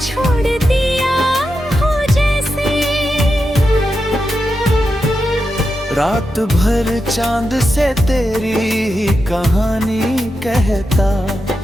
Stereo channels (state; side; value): normal; both; correlation 0.88